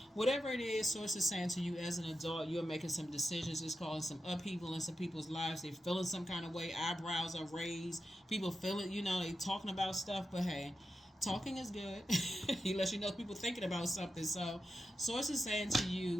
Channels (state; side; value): normal; both; correlation 0.89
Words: whatever it is, Source is saying to you as an adult, you're making some decisions. It's causing some upheaval in some people's lives. They're feeling some kind of way. Eyebrows are raised. People feel it. They talking about stuff. But hey, talking is good. He lets you know people thinking about something. So Source is saying to